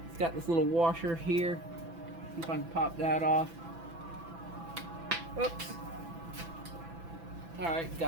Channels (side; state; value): left; late; 6.0 ms